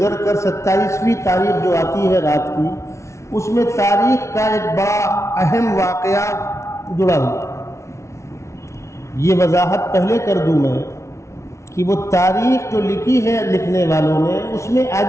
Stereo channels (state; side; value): late; right; 0.14 ms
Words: کر 27ویں تاریخ جو آتی ہے رات کی، اس میں تاریخ کا ایک بڑا اہم واقعہ جڑا ہوا۔ یہ وضاحت پہلے کر دوں میں کہ وہ تاریخ جو لکھی ہے لکھنے والوں نے، اس میں